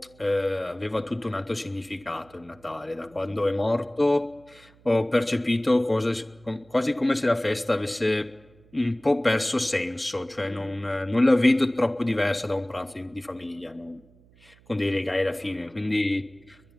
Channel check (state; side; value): noise; right; hum, 28 dB below the sound